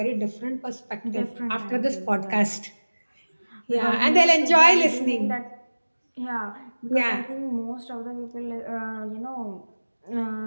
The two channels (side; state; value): both; inverted; correlation -1.00